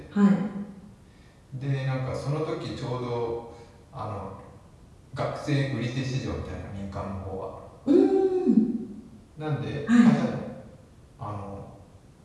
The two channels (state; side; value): identical; both; correlation 1.00